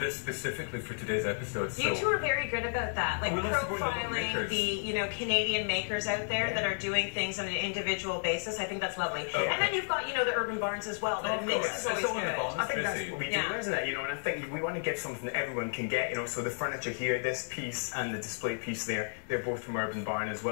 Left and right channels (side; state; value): right; silent; digital silence